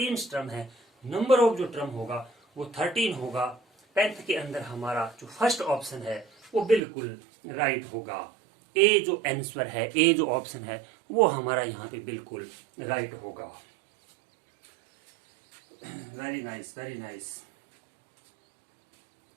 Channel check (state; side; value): drops out; left; at 6.8 s